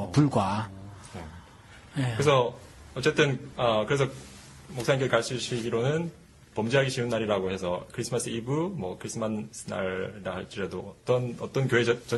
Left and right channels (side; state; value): both; identical; correlation 1.00